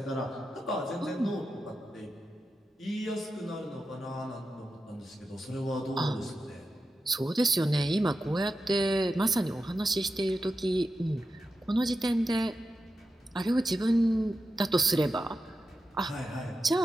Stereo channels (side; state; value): both; normal; correlation 0.90